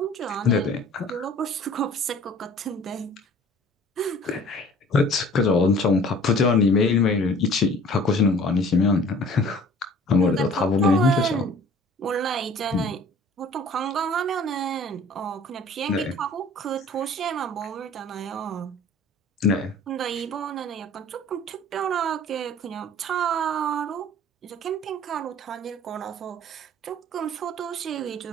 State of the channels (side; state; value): both; normal; correlation 0.49